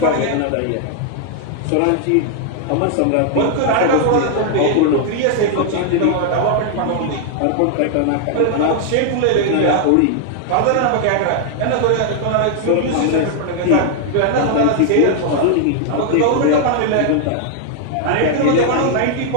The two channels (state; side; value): different; both; correlation 0.00